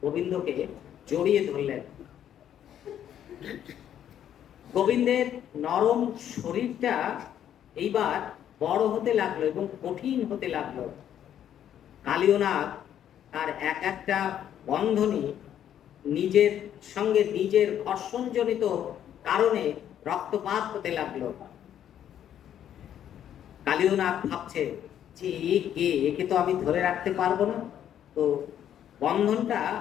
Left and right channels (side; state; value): right; quieter; 10.2 dB